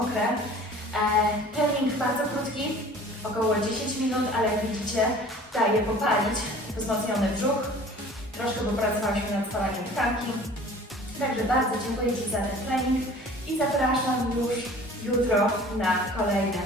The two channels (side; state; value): both; normal; correlation 0.46